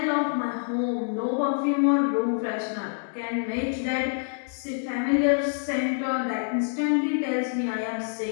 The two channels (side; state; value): right; silent; 61 dB below the other